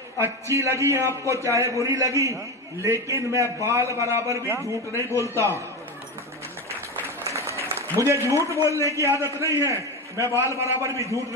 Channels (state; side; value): normal; both; correlation 0.19